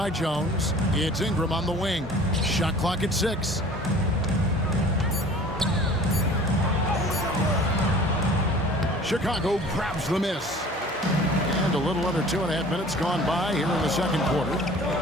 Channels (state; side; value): normal; both; correlation 0.47